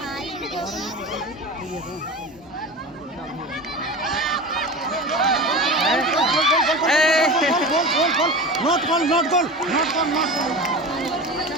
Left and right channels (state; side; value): normal; both; correlation 0.30